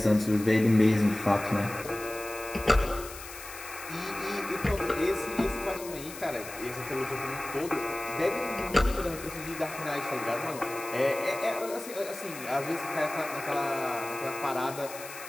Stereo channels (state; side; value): noise; left; hiss, 13 dB below the sound